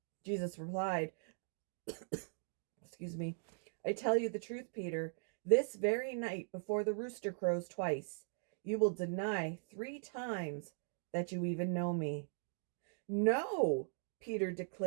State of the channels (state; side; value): silent; left; digital silence